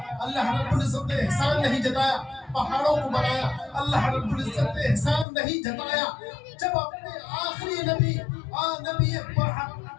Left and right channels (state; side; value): drops out; right; at 5.2 s